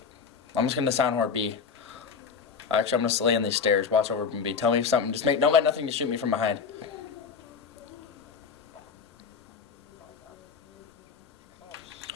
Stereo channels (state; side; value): quieter; right; 5.8 dB